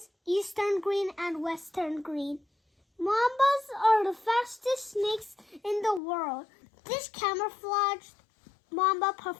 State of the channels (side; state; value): right; drops out; at 6.0 s